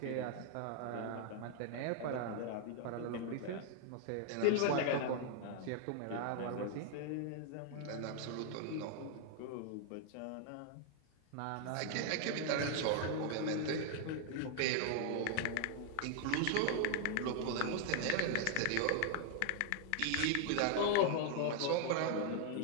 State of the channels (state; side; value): different; both; correlation 0.00